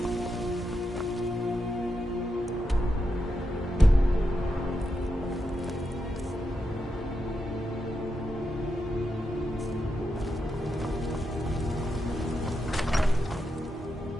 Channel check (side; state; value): both; normal; correlation 0.85